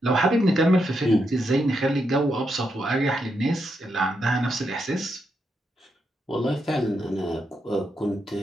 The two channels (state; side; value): normal; both; correlation 0.82